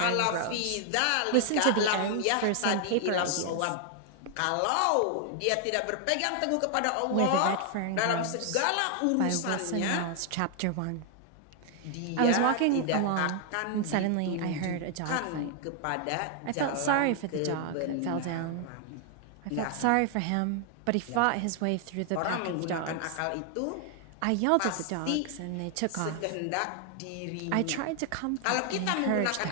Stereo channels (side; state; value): both; different; correlation 0.00